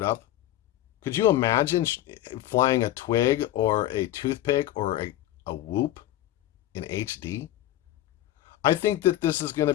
up. Could you imagine flying a twig or a toothpick or a whoop in HD? I think that this is going to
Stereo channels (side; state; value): right; quieter; 13.9 dB